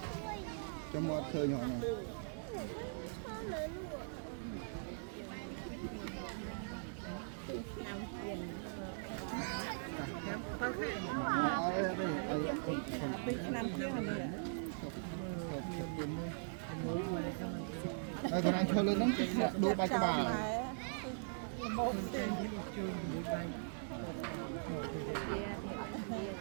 ចាំមកឃើញហ៎ហើយគាត់ចូលលើហ្នឹងដួលបាច់ក្បាលមកទេជួយមួយបាច់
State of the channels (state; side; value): silent; left; digital silence